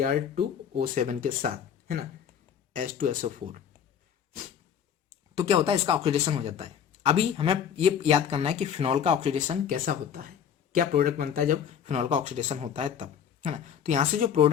के साथ, है ना, H2SO4, तो क्या होता है, इसका ऑक्सीडेशन हो जाता है। अभी हमें ये याद करना है कि फिनॉल का ऑक्सीडेशन कैसा होता है, क्या प्रोडक्ट बनता है जब फिनॉल का ऑक्सीडेशन होता है तब, है ना। तो यहाँ से जो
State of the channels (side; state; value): right; quieter; 8.4 dB